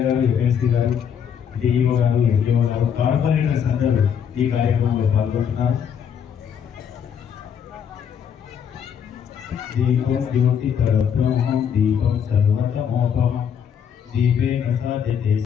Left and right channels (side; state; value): right; quieter; 7.9 dB